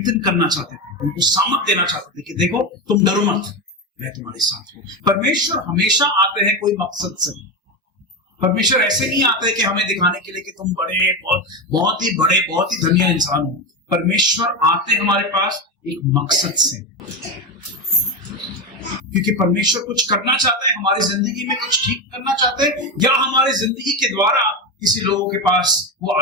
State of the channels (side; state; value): both; normal; correlation 0.15